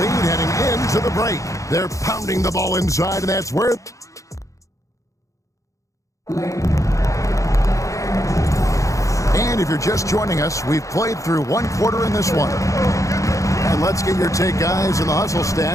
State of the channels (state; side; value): late; right; 0.15 ms